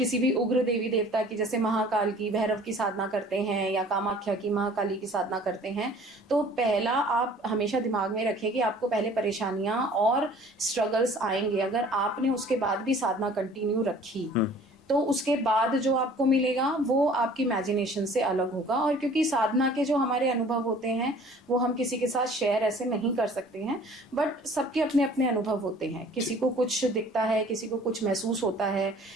भी उग्र देवी देवता की, जैसे महाकाल की, भैरव की साधना करते हैं या कामाख्या की, महाकाली की साधना करते हैं, तो पहला आप हमेशा दिमाग में रखें कि आपको पहले परेशानियां और स्ट्रगल्स आएंगे। अगर आपने उसके बाद भी साधना कंटिन्यू रखी तो उसके बाद जो आपको मिलेगा वो आपकी इमेजिनेशन से अलग होगा। और क्योंकि साधना के जो हमारे अनुभव होते हैं वो हम किसी के साथ शेयर ऐसे नहीं कर सकते हैं, बट सबके अपने अपने अनुभव होते हैं। किसी को कुछ दिखता है, किसी को कुछ महसूस होता है,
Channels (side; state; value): both; normal; correlation 0.50